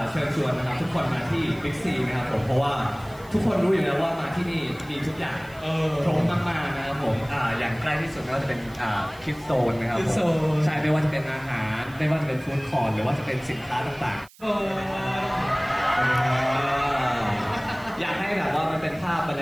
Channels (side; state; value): right; noise; hiss, 25 dB below the sound